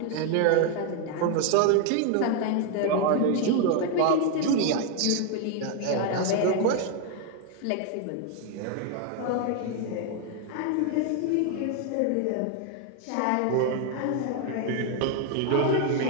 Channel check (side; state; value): both; different; correlation 0.01